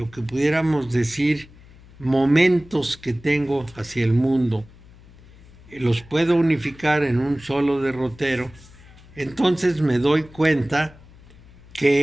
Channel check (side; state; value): left; noise; hum, 23 dB below the sound